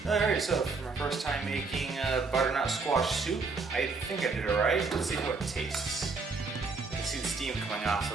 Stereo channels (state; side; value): quieter; left; 4.3 dB